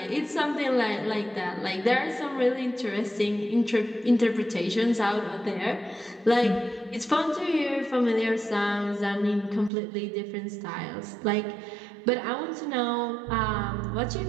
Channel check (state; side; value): drops out; left; at 9.7 s